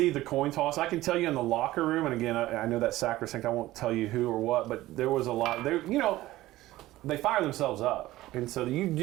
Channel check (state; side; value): quieter; left; 16.6 dB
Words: the coin toss. I can tell you in the locker room, and again, I know that sacrosanct. I won't tell you who or what, but there was a lot. They fire themselves up, and so you